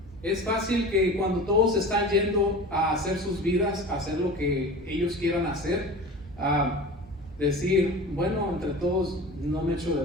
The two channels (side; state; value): both; normal; correlation 0.35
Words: Es fácil que cuando todos están yendo a hacer sus vidas, a hacer lo que ellos quieran hacer, decir, bueno, entre todos no me echo